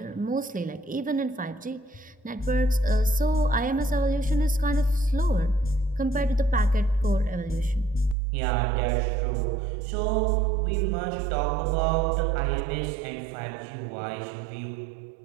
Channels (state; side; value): drops out; left; at 8.2 s